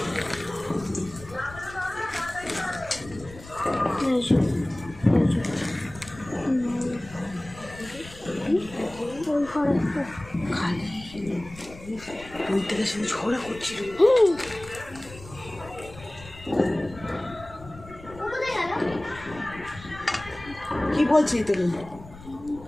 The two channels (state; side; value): noise; left; rumble, 17 dB below the sound